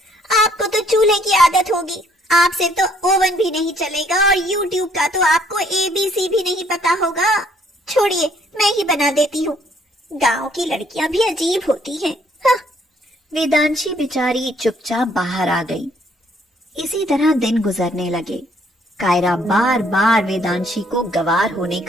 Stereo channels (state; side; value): normal; both; correlation 0.65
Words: आपको तो चूल्हे की आदत होगी। आपसे तो ओवन भी नहीं चलेगा और YouTube का तो आपको ABC भी नहीं पता होगा। छोड़िए, मैं ही बना देती हूँ। गांव की लड़कियां भी अजीब होती हैं। हाँ। वेदांशी बेचारी चुपचाप बाहर आ गई। इसी तरह दिन गुजरने लगे। कायरा बार बार वेदांशी को गवार होने